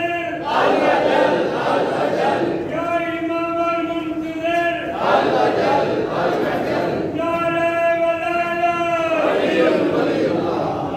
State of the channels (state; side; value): identical; both; correlation 1.00